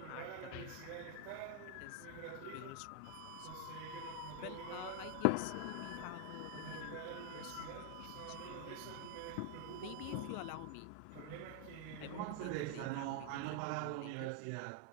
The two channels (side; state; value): both; different; correlation 0.00